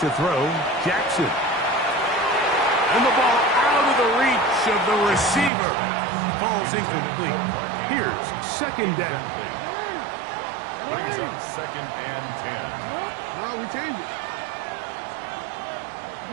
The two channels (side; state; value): left; drops out; at 5.5 s